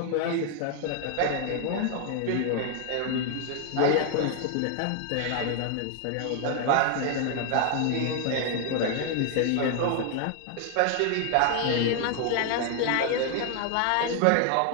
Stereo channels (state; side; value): different; both; correlation 0.00